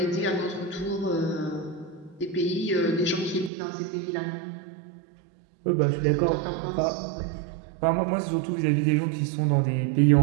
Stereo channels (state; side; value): drops out; left; at 3.5 s